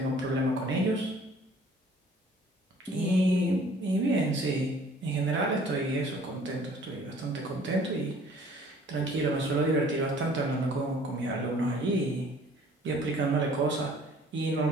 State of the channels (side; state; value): both; normal; correlation 0.54